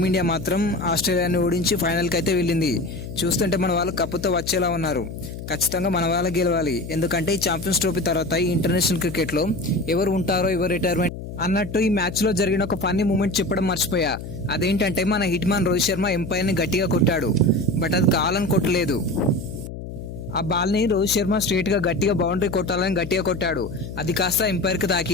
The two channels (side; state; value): left; noise; hum, 10 dB below the sound